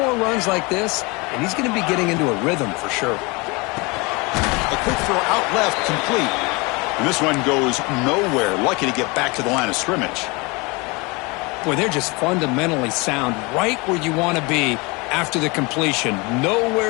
runs like this, and he's going to be getting into a rhythm for sure. A quick throw out left, complete. And this one goes nowhere. Lucky to get back to the line of scrimmage. Boy, they're just fundamentally sound, right where you want to be after the completion.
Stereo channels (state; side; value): quieter; right; 26.9 dB